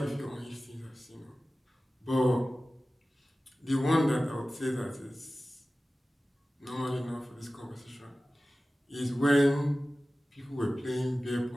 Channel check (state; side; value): normal; both; correlation 0.96